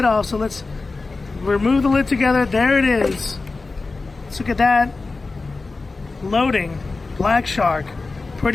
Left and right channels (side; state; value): right; quieter; 3.7 dB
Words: off, so let's remove the lid together. There it is. Let's look at that. Loading. Black Shark.